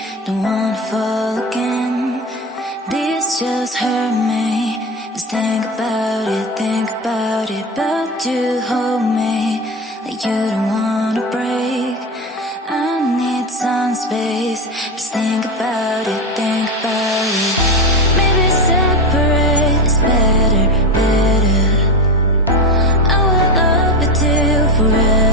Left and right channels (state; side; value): normal; both; correlation 0.20